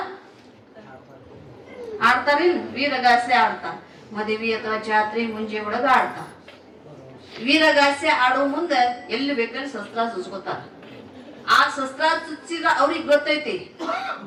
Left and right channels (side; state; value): both; identical; correlation 1.00